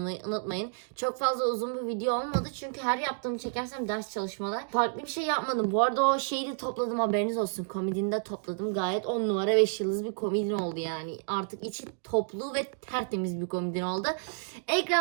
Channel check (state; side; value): silent; left; digital silence